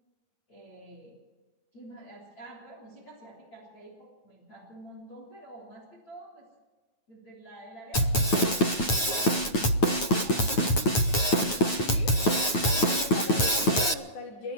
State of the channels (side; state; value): right; late; 9.2 ms